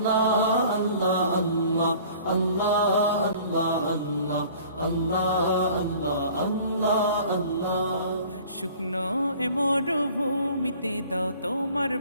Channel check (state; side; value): inverted; both; correlation -0.49